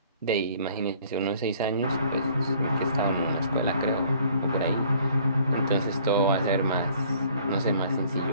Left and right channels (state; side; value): inverted; both; correlation -0.57